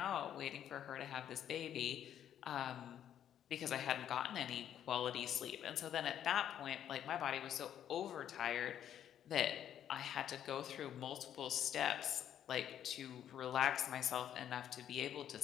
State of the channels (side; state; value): right; quieter; 10.2 dB